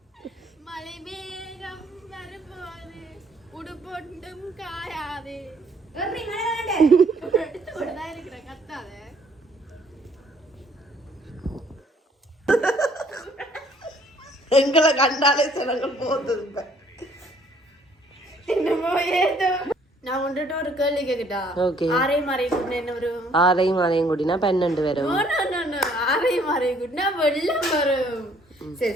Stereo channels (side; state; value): both; normal; correlation 0.62